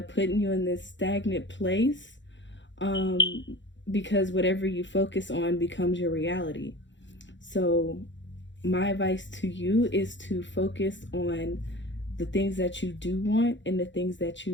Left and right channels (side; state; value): right; late; 0.54 ms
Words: putting you in this stagnant place, um, because whatever you focus on becomes your reality. So my advice to you is to focus on the things that you do want and the things